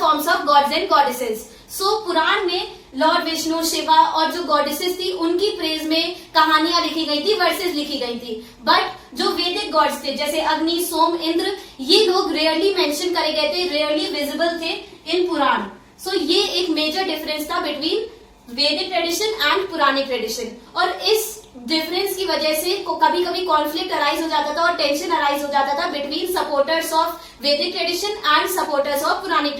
of gods and goddesses. So Purana में लॉर्ड विष्णु, शिवा और जो गॉडेसेस थी उनकी प्रेज में कहानियां लिखी गई थी, वर्सेस लिखी गई थी। बट जो वैदिक गॉड्स थे जैसे अग्नि, सोम, इंद्र, ये लोग रेयरली मेंशन करे गए थे, रेयरली विजिबल थे इन पुराण। सो ये एक मेजर डिफरेंस था बिटवीन वैदिक ट्रेडिशन एंड पुरानिक ट्रेडिशन। और इस डिफरेंस की वजह से कभी कभी कॉन्फ्लिक्ट अराइज हो जाता था और टेंशन अराइज हो जाता था between supporters of Vedic tradition and supporters of Puranic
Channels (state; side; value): identical; both; correlation 1.00